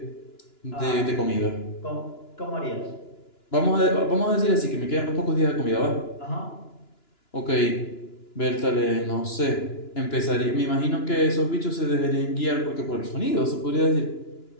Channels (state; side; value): late; right; 2.9 ms